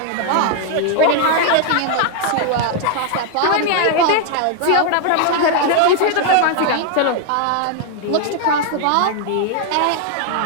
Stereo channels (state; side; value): different; both; correlation 0.00